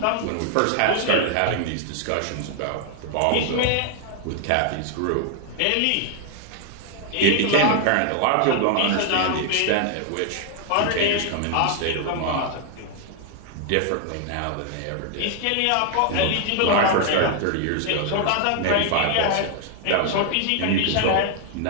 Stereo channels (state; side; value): different; both; correlation 0.00